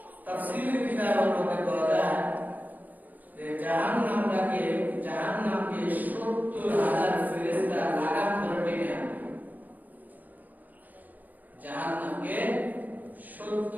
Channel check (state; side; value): late; left; 0.082 ms